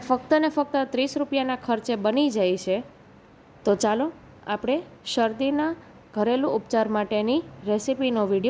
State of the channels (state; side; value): identical; both; correlation 1.00